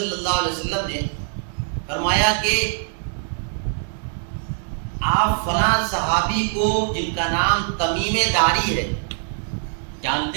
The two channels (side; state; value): left; silent; digital silence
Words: اللہ علیہ وسلم نے فرمایا کہ آپ فلاں صحابی کو جن کا نام تمیم داری ہے